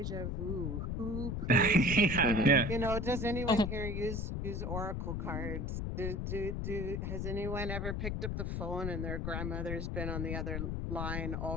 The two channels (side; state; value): left; noise; rumble, 2 dB below the sound